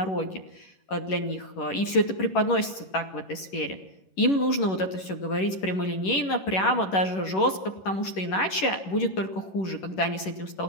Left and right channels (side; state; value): right; late; 11 ms